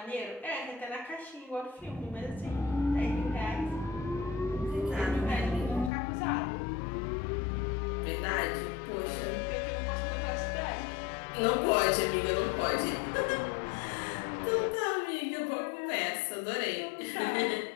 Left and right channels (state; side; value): drops out; right; at 5.9 s